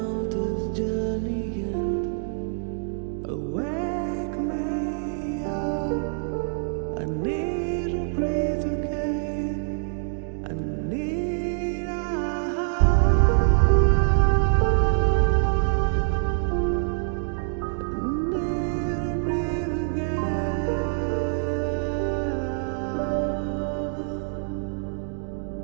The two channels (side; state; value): left; silent; digital silence